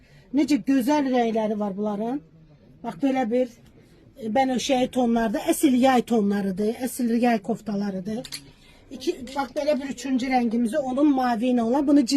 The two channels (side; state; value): both; identical; correlation 1.00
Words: Nece güzel renkleri var bunların. Bak böyle bir benöşey tonlarda, esil yay tonlarıdır. Esil yay koftalarıdır. Bak böyle bir üçüncü rengimizi onun mavi olan, bunu